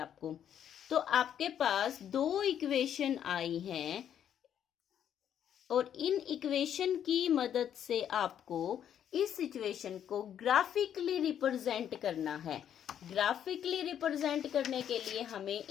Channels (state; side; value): quieter; right; 9.6 dB